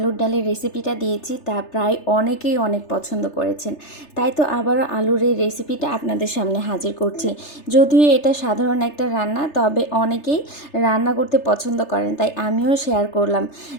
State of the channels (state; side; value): late; right; 3.3 ms